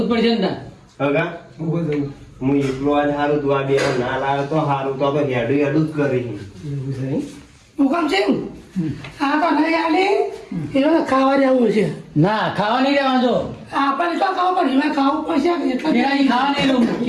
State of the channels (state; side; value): identical; both; correlation 1.00